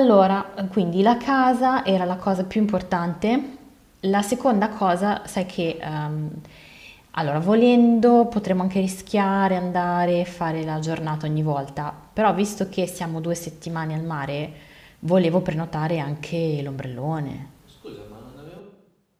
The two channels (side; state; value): both; identical; correlation 1.00